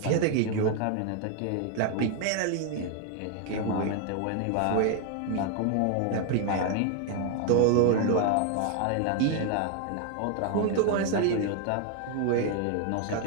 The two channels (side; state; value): both; different; correlation 0.00